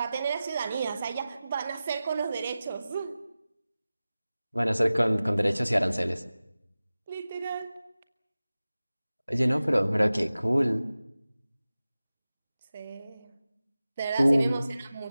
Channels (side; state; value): both; inverted; correlation -0.96